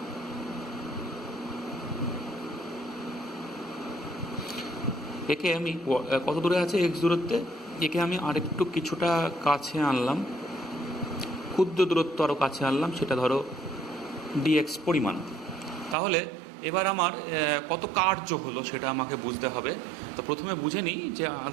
একে আমি কত দূরে আছে এক্স দূরত্বে, একে আমি আরেকটু কিছুটা কাছে আনলাম, ক্ষুদ্র দূরত্ব আরও কাছে আনলাম, সেটা ধরো ডিএক্স পরিমাণ। তাহলে এবার আমার কত কার্য হলো সেটা আমাকে বুঝতে হবে। তো প্রথমে বুঝে নিই যে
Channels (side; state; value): left; drops out; at 16.0 s